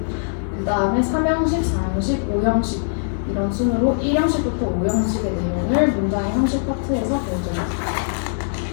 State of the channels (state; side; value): silent; right; digital silence